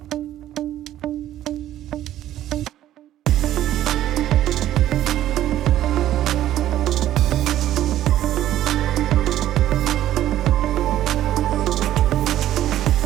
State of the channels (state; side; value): quieter; left; 12.8 dB